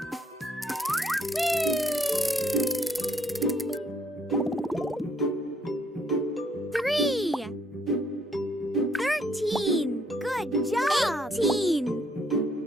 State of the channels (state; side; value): normal; both; correlation 0.68